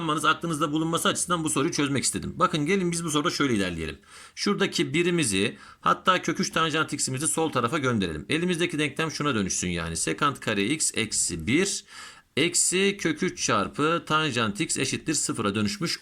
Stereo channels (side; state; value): both; identical; correlation 1.00